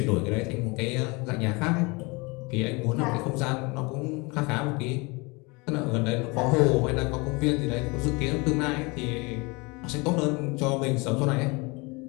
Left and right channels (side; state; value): right; quieter; 27.1 dB